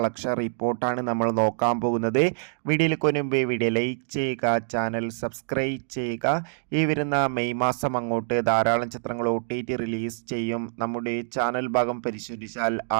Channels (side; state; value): left; silent; digital silence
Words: റിപ്പോർട്ടാണ് നമ്മൾ നോക്കാൻ പോകുന്നത്. വീഡിയോയിലേക്ക് മുൻപ് വീഡിയോ ലൈക്ക് ചെയ്യുക, ചാനൽ സബ്സ്ക്രൈബ് ചെയ്യുക. ഈ വരുന്ന മെയ് മാസം അങ്ങോട്ട് ധാരാളം ചിത്രങ്ങൾ OTT റിലീസ് ചെയ്യും. നമ്മുടെ ചാനൽ ഭാഗം പരിശോധിച്ചാൽ